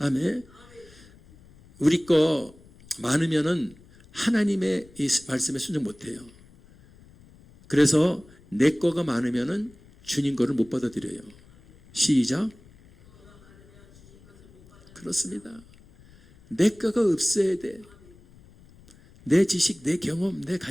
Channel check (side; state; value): left; noise; rumble, 25 dB below the sound